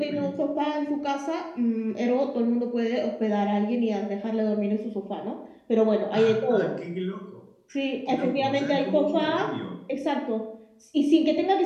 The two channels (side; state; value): both; identical; correlation 1.00